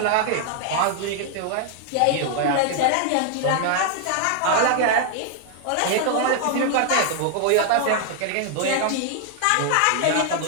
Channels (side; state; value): both; different; correlation 0.00